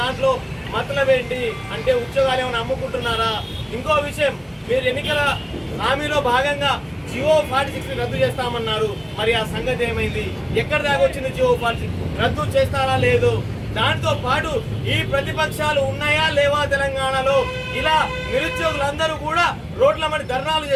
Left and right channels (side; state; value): both; identical; correlation 1.00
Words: దాంట్లో మతలబ్ ఏంటి? అంటే ఉద్యోగాలు ఏమైనా అమ్ముకుంటున్నారా? ఇంకో విషయం, మీరు ఎన్నికల హామీలో భాగంగా జియో 46 రద్దు చేస్తామన్నారు. మరి ఆ సంగతి ఏమైంది? ఎక్కడ దాకా వచ్చింది జియో 46? రద్దు చేస్తారా లేదు? దాంతో పాటు ఈ ప్రతిపక్షాలు ఉన్నాయా లేవా తెలంగాణలో? ఇలా నిరుద్యోగులందరూ కూడా రోడ్ల మీద ధర్నాలు